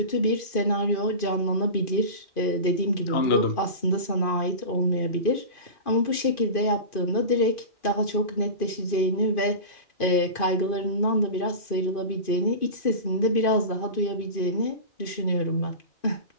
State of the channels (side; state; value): right; late; 2.5 ms